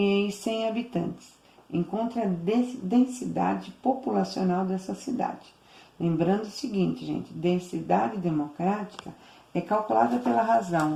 habitantes. Encontre a densidade populacional dessa cidade. Lembrando o seguinte, gente, densidade democrática é calculada pela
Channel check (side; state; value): both; identical; correlation 1.00